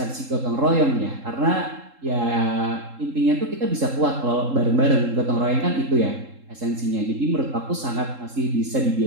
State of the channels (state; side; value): late; left; 3.7 ms